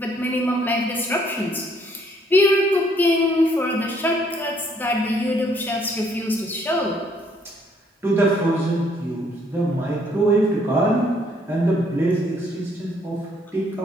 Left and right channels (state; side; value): normal; both; correlation 0.66